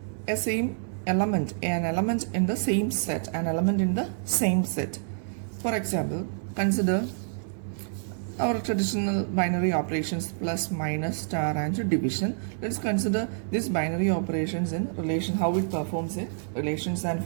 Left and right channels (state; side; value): silent; left; 60 dB below the other